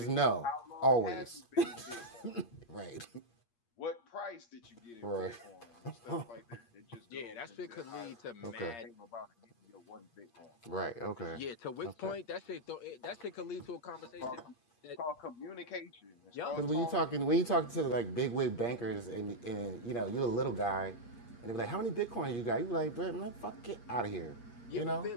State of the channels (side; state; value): right; late; 8.5 ms